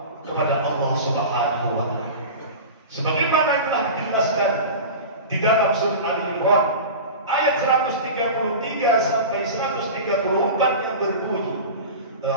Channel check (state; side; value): inverted; both; correlation -0.31